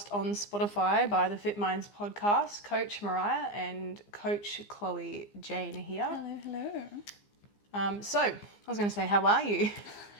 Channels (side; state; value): right; late; 15 ms